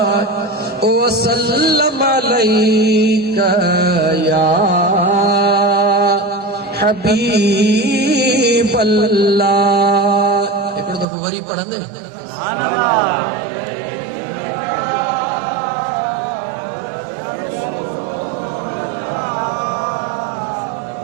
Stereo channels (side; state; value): left; drops out; at 11.1 s